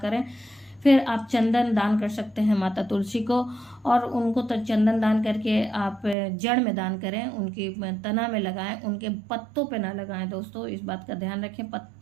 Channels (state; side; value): drops out; left; at 6.2 s